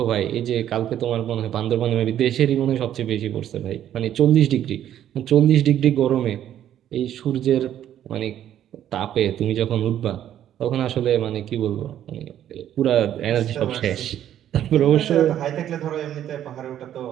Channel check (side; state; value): left; quieter; 11.0 dB